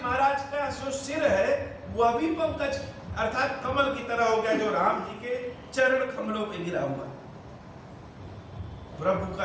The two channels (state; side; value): identical; both; correlation 1.00